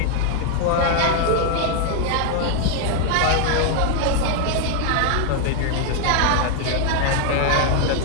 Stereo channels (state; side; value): different; both; correlation 0.00